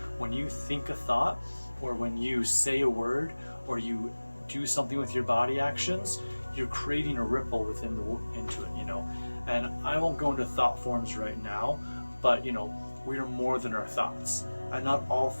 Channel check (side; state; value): both; inverted; correlation -1.00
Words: When you think a thought, or when you say a word, or you do something with your body actions, you're creating a ripple into it, And I won't go into thought forms right now, but we are more than our thoughts, and not all